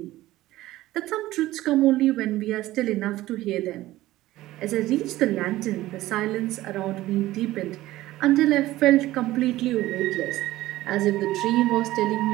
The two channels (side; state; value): left; quieter; 16.4 dB